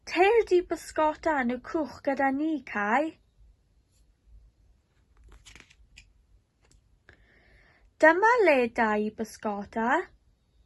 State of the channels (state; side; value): identical; both; correlation 1.00